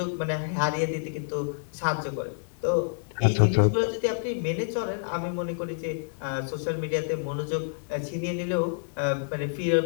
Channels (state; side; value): silent; right; 58 dB below the other